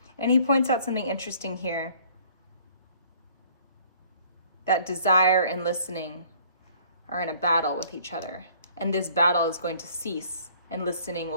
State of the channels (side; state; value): both; inverted; correlation -0.56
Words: And he points out something interesting here, that desire and listening are in a battle with each other. And this battle is going to cease and listening